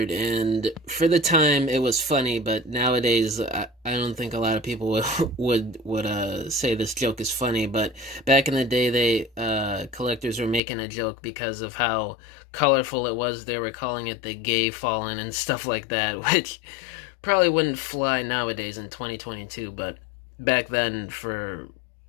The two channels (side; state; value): right; drops out; at 10.6 s